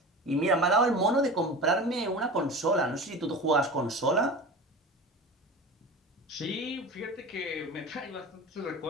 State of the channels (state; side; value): normal; both; correlation 0.33